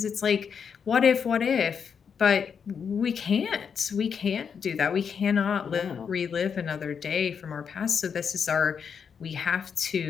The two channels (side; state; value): right; quieter; 6.8 dB